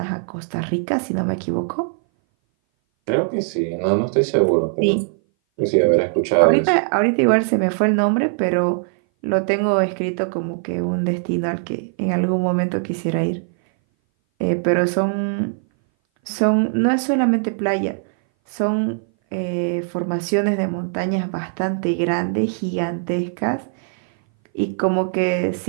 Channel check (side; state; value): left; silent; 59 dB below the other